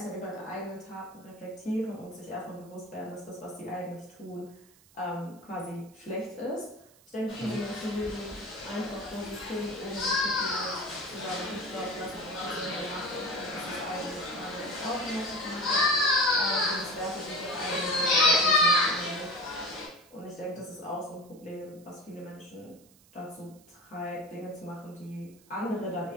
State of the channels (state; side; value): noise; right; hiss, 27 dB below the sound